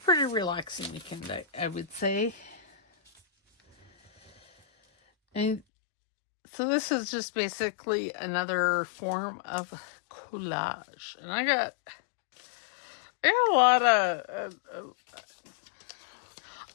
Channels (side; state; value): right; drops out; at 5.6 s